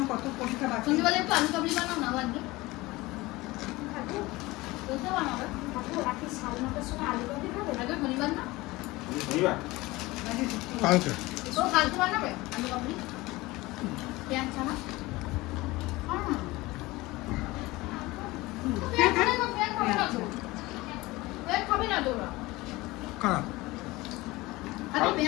কত পরীক্ষা বাকি। তুমি বলে একটু আলু কাবলি বানাও না বাদ দিয়ে বলতে বানাবে রাতে 9:30টার সময় আলু ভাজি খাবে? আগে শনিবার না কালকে ও কালকে বানাবে আলু কাবলি পেঁয়াজ ছানা খাবে না তো ওরা কারা আগে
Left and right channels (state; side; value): quieter; right; 20.6 dB